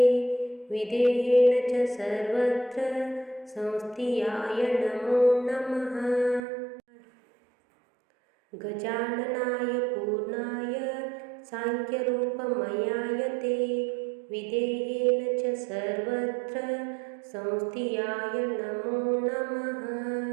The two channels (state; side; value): drops out; left; at 6.4 s